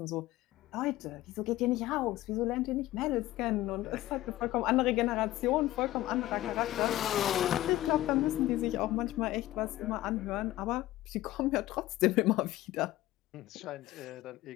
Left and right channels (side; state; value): right; quieter; 15.9 dB